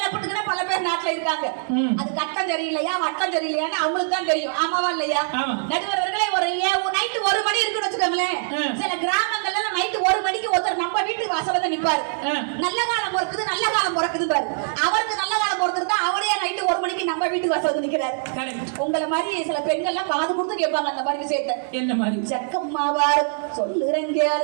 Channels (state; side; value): silent; left; digital silence